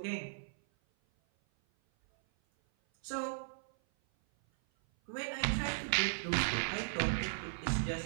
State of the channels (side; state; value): left; silent; 53 dB below the other